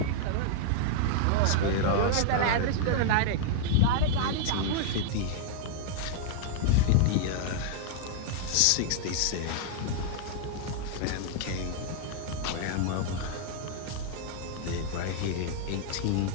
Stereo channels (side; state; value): both; different; correlation -0.01